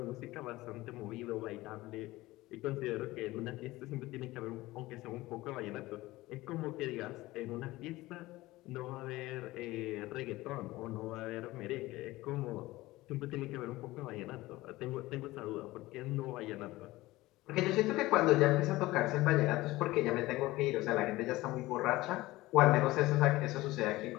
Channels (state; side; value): quieter; right; 18.7 dB